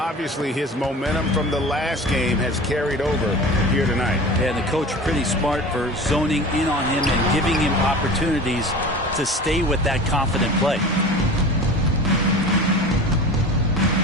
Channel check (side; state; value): both; normal; correlation 0.36